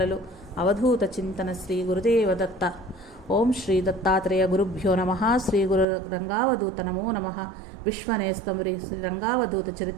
అవధూత చింతన శ్రీ గురుదేవదత్త. ఓం శ్రీ దత్తాత్రేయ గురుభ్యో నమః. శ్రీ గురు రంగావధూత నమో నమః. విశ్వనేస్తం శ్రీ రంగావధూత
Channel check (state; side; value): drops out; left; at 5.9 s